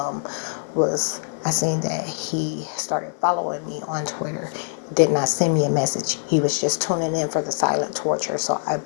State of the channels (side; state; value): right; silent; digital silence